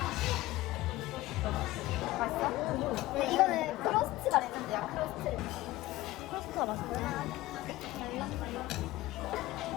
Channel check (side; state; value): right; quieter; 17.5 dB